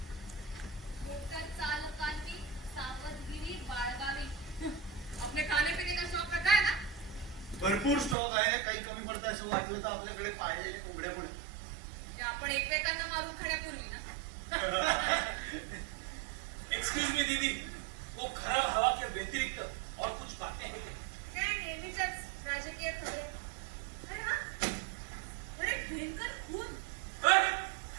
मोटर चालकांनी सावधगिरी बाळगावी. अपने खाने पीने का शौक रखा है ना भरपूर स्टॉक आहे काही कमी पडतं असं वाटलं तर आपल्याकडे पाहिजे उघडे पण की आपण एकमेकांना मारून खाण्यापूर्वी ना एक्सक्यूज मी दीदी वो खराब हवा के व्यतिरिक्त और कुछ बातें हैं क्या? काय नेहमीच्याच राजकीय खबरी अरे हा अरे भयंकर खून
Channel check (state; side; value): drops out; left; at 8.2 s